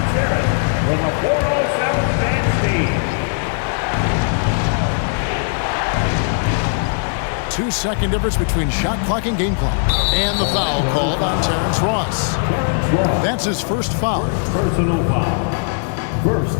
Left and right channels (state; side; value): silent; right; 59 dB below the other